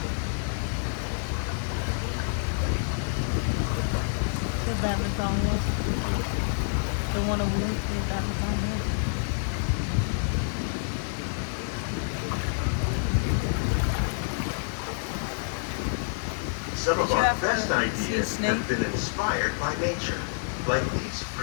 The badminton one. The one over there, the badminton one. Some Did of you our ever best see a ideas snake? have been inspired by nature, like these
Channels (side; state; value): right; silent; digital silence